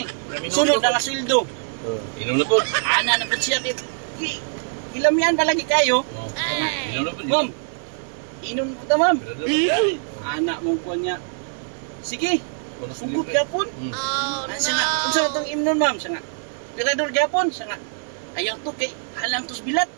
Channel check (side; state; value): left; silent; digital silence